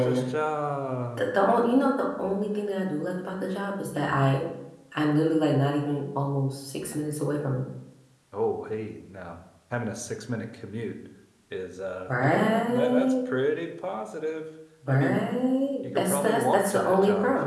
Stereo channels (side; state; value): both; identical; correlation 1.00